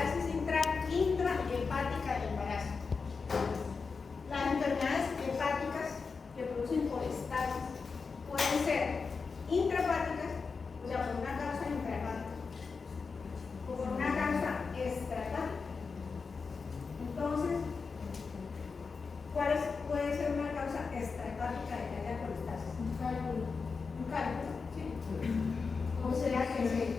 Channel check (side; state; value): right; quieter; 4.9 dB